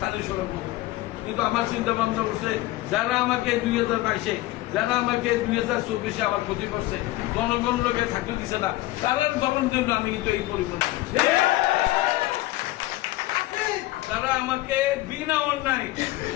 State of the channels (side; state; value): right; quieter; 17.8 dB